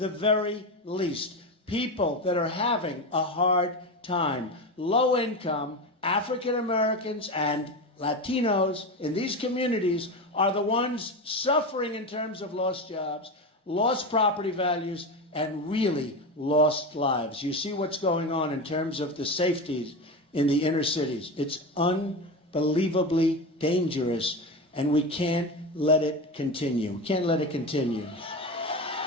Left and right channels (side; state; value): both; normal; correlation 0.21